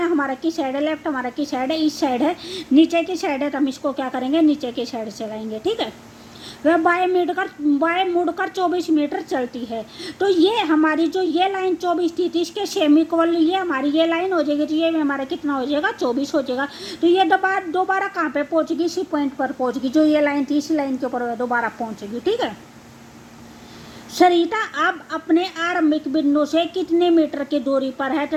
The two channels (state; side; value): identical; both; correlation 1.00